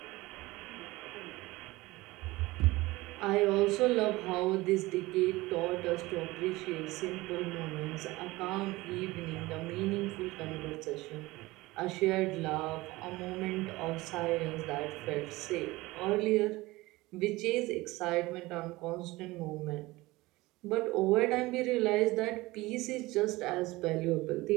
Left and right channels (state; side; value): quieter; left; 20.3 dB